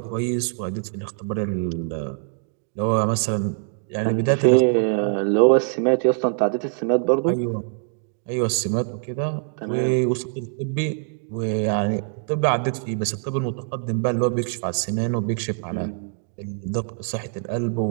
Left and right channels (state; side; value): silent; left; digital silence